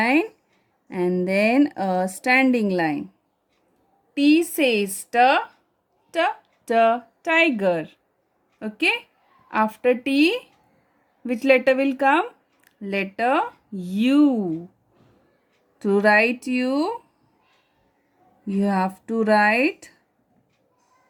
and then a standing line. T says tiger. Okay. After T, which letter will come? Letter U. To write U, you have to write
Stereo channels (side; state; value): both; identical; correlation 1.00